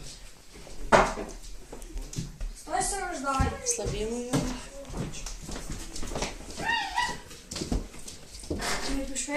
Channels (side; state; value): both; identical; correlation 1.00